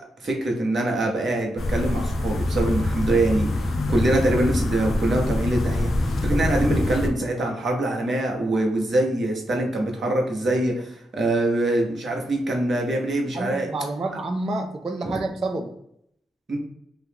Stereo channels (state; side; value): normal; both; correlation 0.84